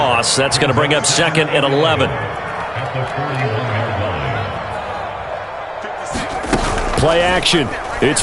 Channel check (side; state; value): both; identical; correlation 1.00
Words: That's going to bring up 2nd and 11. Play action. It's